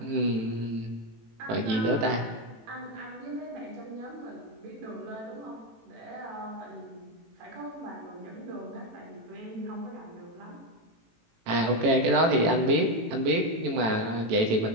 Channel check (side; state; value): left; late; 18 ms